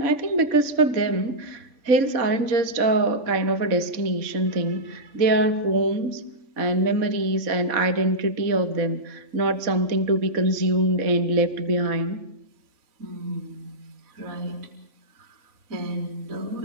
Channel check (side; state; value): left; late; 3.5 ms